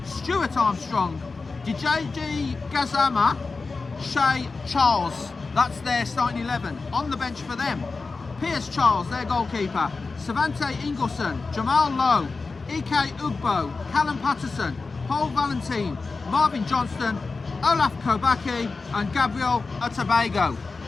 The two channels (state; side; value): quieter; right; 4.1 dB